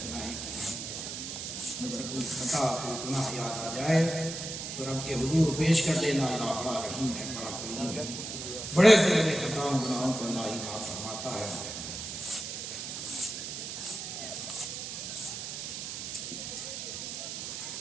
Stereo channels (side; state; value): right; noise; hiss, 6 dB below the sound